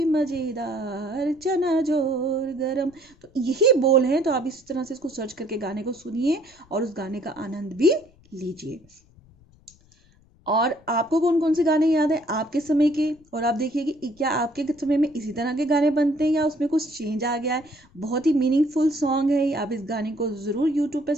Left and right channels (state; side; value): noise; left; rumble, 30 dB below the sound